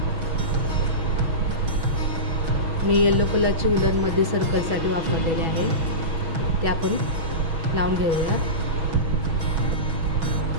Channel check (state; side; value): late; left; 6.1 ms